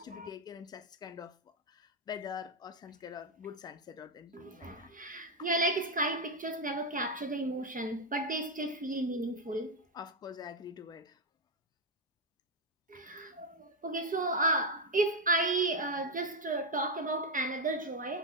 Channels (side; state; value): both; normal; correlation 0.05